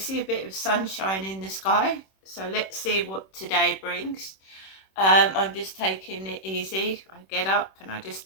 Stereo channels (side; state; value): right; late; 26 ms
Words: a bit of sunshine in the sky. So let's see what today brings. I'm just taking it easy. I get up and I